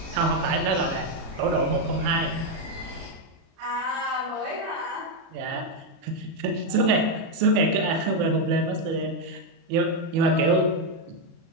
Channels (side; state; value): left; late; 36 ms